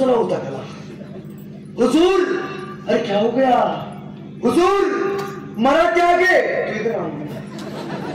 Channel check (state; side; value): identical; both; correlation 1.00